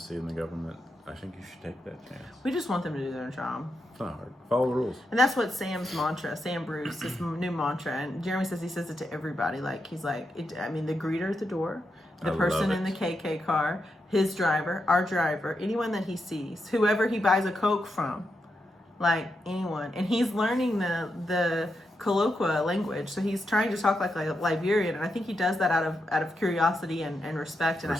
and the government, I think you should take that chance. We just want them to do their job. It's not hard. Follow the rules. And that's what Sam's mantra, Sam Bruce, his new mantra. And Jeremy says he says it to everybody. Like, he's like, the greeter at the door, the person in the KK car, his driver, our driver, anyone that he sees, whoever he buys a Coke from, like anyone. And he's learning the colloqua language, so he's trying to talk like a Liberian, and I think he does that out of curiosity and respect, and I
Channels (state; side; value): normal; both; correlation 0.85